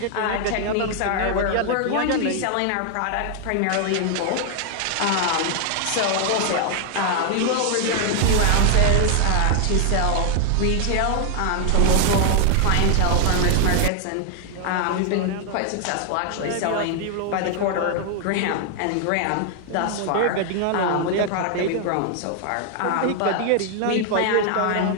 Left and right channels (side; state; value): both; different; correlation 0.00